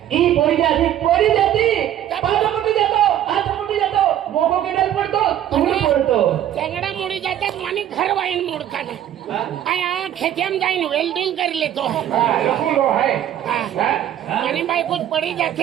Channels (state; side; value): quieter; left; 11.3 dB